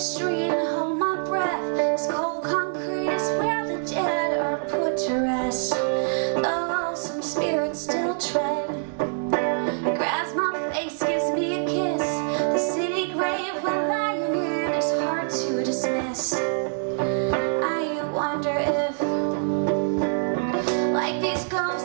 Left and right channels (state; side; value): silent; left; digital silence